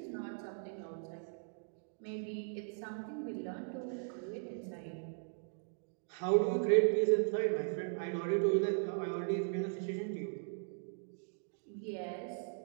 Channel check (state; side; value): silent; left; digital silence